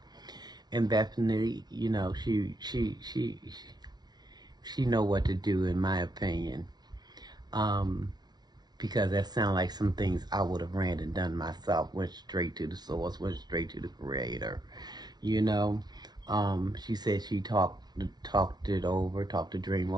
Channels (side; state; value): left; late; 0.19 ms